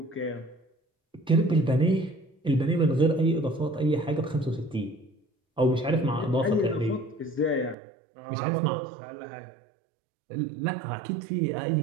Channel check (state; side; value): drops out; left; at 7.8 s